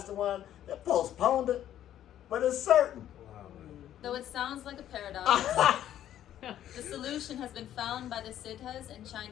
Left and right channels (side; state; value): right; quieter; 11.5 dB